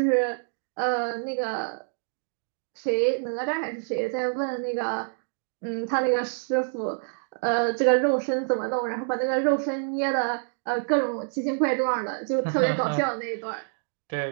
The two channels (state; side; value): silent; left; digital silence